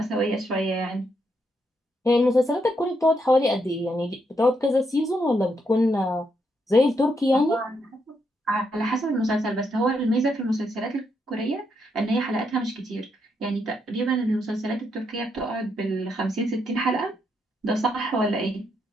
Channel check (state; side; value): normal; both; correlation 0.78